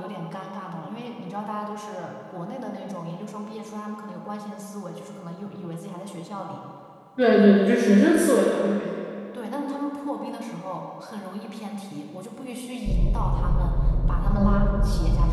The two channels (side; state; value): both; identical; correlation 1.00